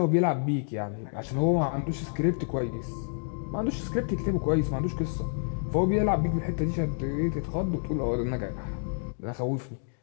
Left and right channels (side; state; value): right; silent; digital silence